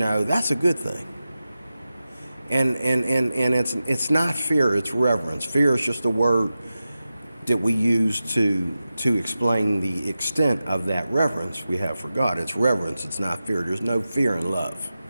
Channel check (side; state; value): both; inverted; correlation -0.93